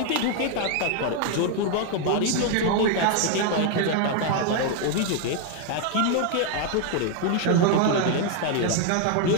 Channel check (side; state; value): both; different; correlation 0.01